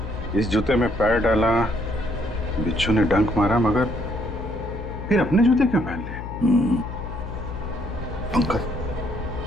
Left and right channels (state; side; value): noise; left; hum, 9 dB below the sound